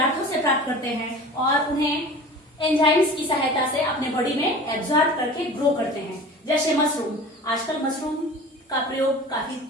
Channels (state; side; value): normal; both; correlation 0.39